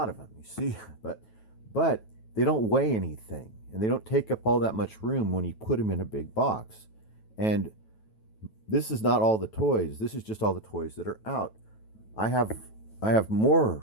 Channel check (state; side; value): late; right; 9.2 ms